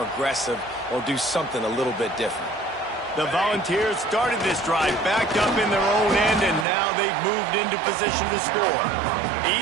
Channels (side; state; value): left; drops out; at 6.7 s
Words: aggressive or do something a little bit different. The Volunteers started this drive backed up in their own end, and now they've moved into position to score.